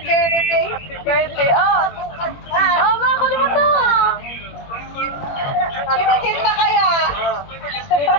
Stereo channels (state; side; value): late; right; 21 ms